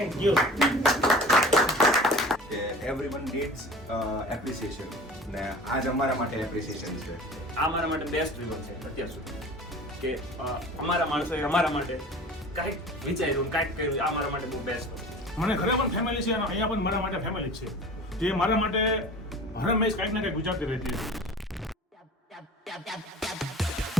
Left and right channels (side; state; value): both; normal; correlation 0.41